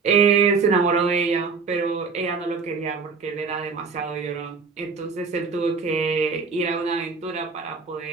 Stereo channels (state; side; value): quieter; left; 5.0 dB